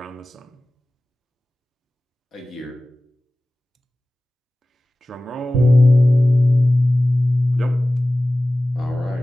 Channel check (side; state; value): both; normal; correlation 0.97